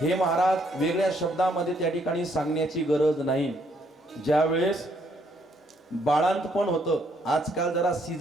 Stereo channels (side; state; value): both; normal; correlation 0.70